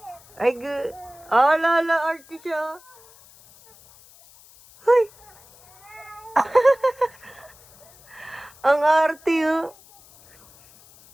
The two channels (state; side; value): noise; left; hiss, 25 dB below the sound